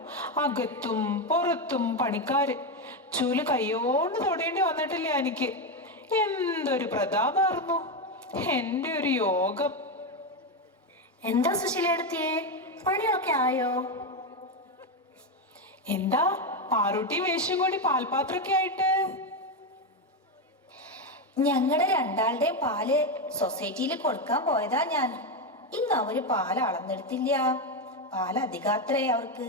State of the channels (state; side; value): normal; both; correlation 0.09